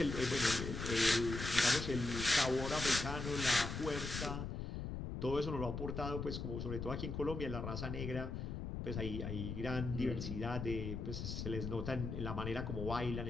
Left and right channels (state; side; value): noise; left; rumble, 4 dB below the sound